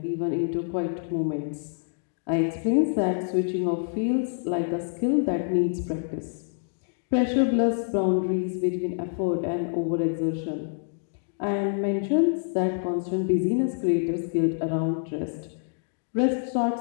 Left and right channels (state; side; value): silent; right; digital silence